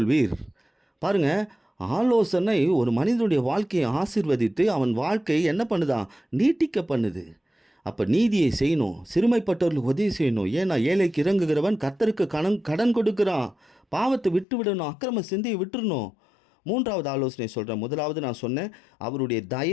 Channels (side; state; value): right; drops out; at 14.5 s